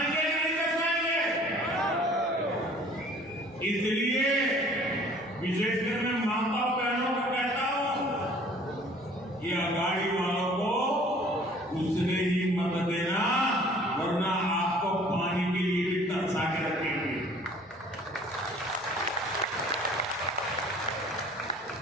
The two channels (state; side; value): noise; left; hum, 29 dB below the sound